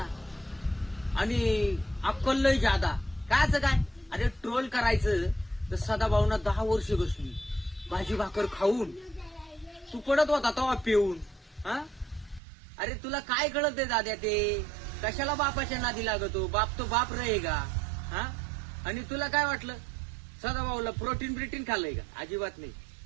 आणि अक्कल लय जादा. कायच काय? अरे ट्रोल करायचं तर सदाभाऊना 10 वर्ष बसली भाजी भाकर खाऊन. तू पडत होता तेव्हा पिऊन. हा, अरे तुला काय कळत आहे दाद्या? ते कशाला बापाच्या नादी लागतो? बाप तो बाप रहेगा. हा, आणि तुला काय वाटलं सदाभाऊला प्रोटीन खाल्लंय का? अजिबात नाही.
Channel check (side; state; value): left; drops out; at 12.4 s